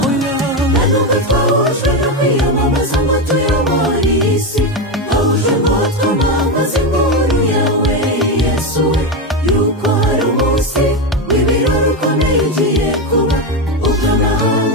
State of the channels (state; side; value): normal; both; correlation 0.12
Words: nubwo twahujwe no kwiyamamaza ngo tuyobore iyi si twahujwe ngo twamamaze inkuru yawe Yesu we yuko hari umunsi w'ibirori ukomeye ugiye kuba ubwo